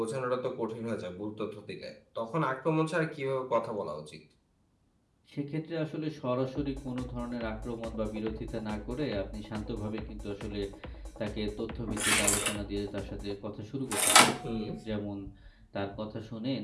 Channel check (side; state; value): both; identical; correlation 1.00